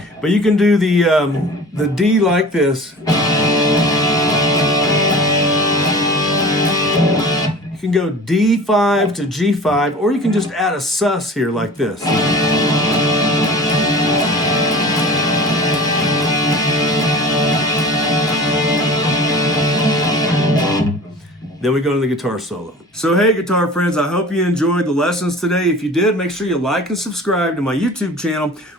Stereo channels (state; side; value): normal; both; correlation 0.39